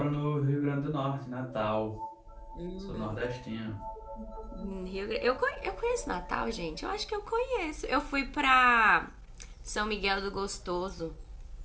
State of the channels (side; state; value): both; identical; correlation 1.00